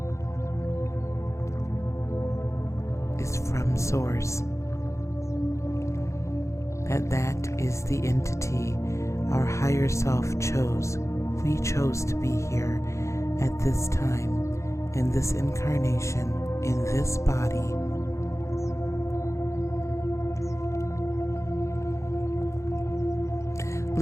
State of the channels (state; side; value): late; right; 0.14 ms